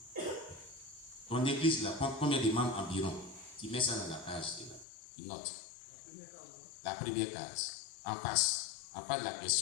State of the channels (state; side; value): drops out; right; at 4.9 s